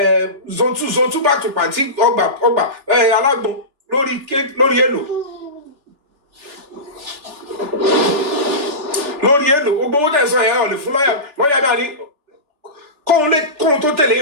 zone 2 back to party ọgbà alágbọn lórí èlò gbogbo owó tẹ̀sán ẹ̀ ọ̀ lè fún lọ́yà náà ní kóhun tó tẹ̀lé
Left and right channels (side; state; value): left; late; 3.4 ms